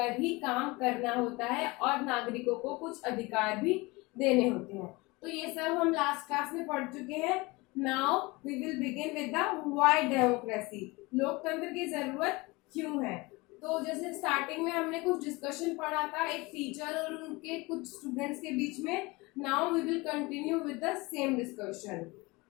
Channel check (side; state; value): right; quieter; 23.8 dB